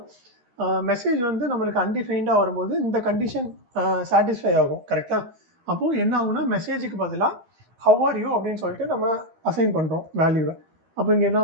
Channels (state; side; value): late; left; 13 ms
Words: மெசேஜ் வந்து நம்மளுக்கு அன்டிஃபைன்டாக வரும்போது இந்த கண்டிஷன் சாட்டிஸ்ஃபை ஆகும். கரெக்டாக? அப்போது என்ன ஆகும்னா மெசேஜுக்கு பதிலாக ஹவ் ஆர் யூ அப்படின்னு சொல்லிட்டு நம்ம அசைன் பண்ணுறோம் வேல்யூவை. அப்போ இங்கே என்ன